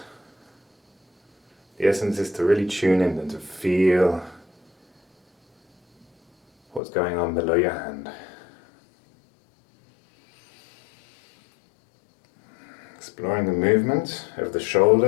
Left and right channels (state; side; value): drops out; right; at 6.8 s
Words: The essence is to really tune in and to feel what's going on below your hand. Exploring the movement of the